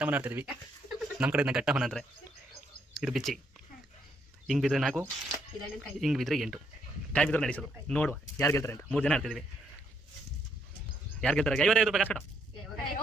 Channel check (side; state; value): both; normal; correlation 0.73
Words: ಆಡ್ತಿದ್ವಿ, ನಮ್ಮ ಕಡೆ ಘಟ್ಟಮನ ಅಂದ್ರೆ ಇದು ಬಿಚ್ಚಿ. ಹಿಂಗ್ ಬಿದ್ರೆ 4, ಹಿಂಗ್ ಬಿದ್ರೆ 8 ಕಾಯಿ ಬಿದ್ರೆ ನಡೆಸೋದು. ನೋಡುವ ಯಾರು ಗೆಲ್ತಾರೆ ಅಂತ. 3 ಜನ ಆಡ್ತಿದ್ವಿ. ಯಾರು ಗೆಲ್ತಾರೆ? 55 ರೂಪಾಯಿ ಕಾಸು ಕಟ್ಟು.